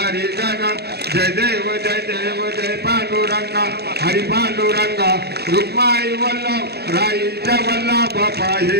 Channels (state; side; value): late; left; 0.47 ms